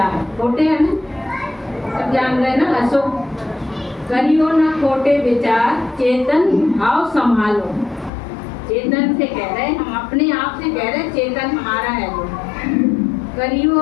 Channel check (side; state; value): right; drops out; at 8.1 s